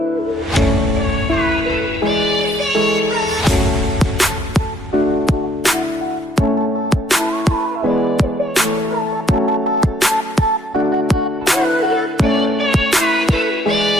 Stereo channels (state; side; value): normal; both; correlation 0.65